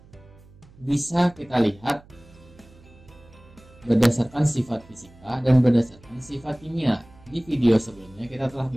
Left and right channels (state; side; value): noise; right; hum, 25 dB below the sound